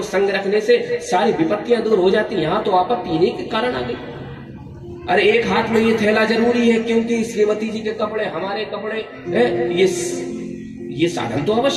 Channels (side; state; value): both; identical; correlation 1.00